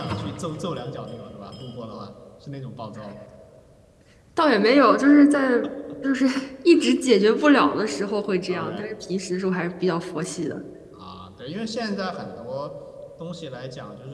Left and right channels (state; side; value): identical; both; correlation 1.00